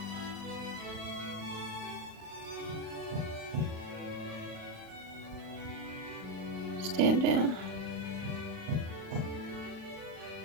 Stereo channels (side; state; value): left; late; 39 ms